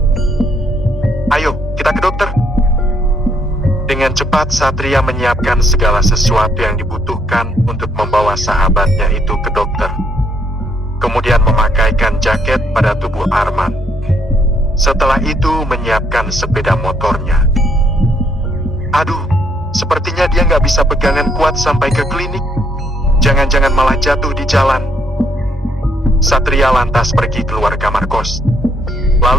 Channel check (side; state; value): both; normal; correlation 0.71